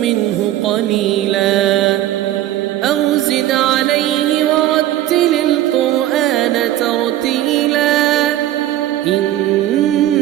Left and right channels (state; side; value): quieter; left; 13.6 dB